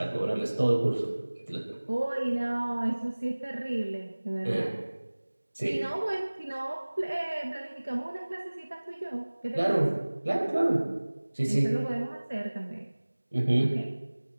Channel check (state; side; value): inverted; both; correlation -1.00